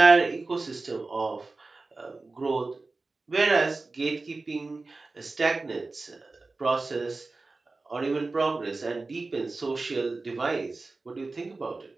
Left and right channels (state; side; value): quieter; left; 3.5 dB